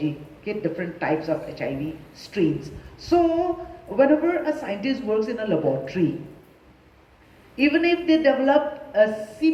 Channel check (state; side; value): identical; both; correlation 1.00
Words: okay? Different types of HIV strains. So whenever a scientist works in a laboratory, even if they develop a